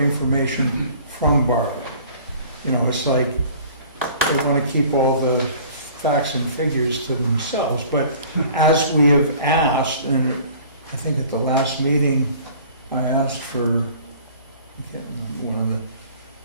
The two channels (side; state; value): both; inverted; correlation -0.49